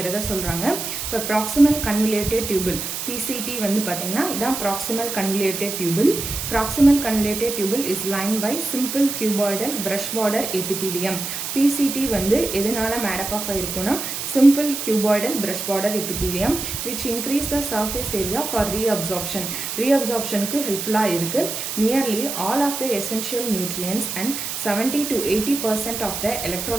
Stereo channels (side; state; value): right; noise; hiss, 5 dB below the sound